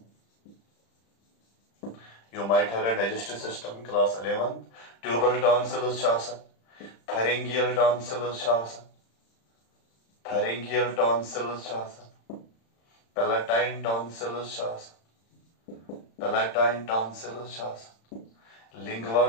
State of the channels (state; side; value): late; right; 35 ms